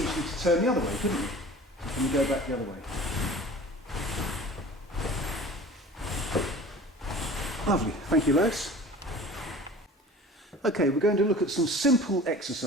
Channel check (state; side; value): normal; both; correlation 0.42